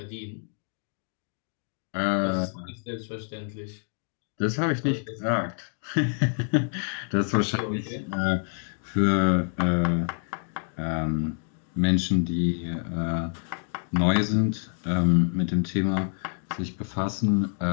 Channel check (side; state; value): right; silent; 56 dB below the other